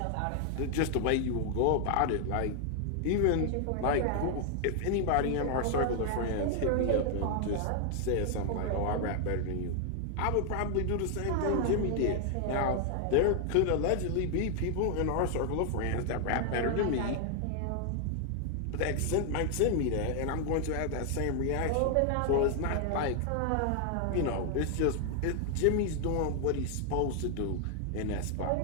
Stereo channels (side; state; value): both; different; correlation 0.00